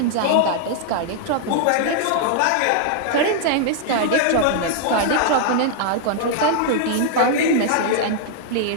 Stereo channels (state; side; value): different; both; correlation -0.01